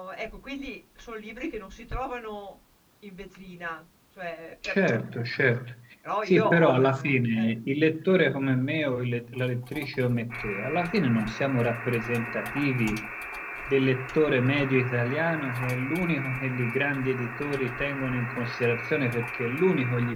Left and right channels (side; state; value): both; identical; correlation 1.00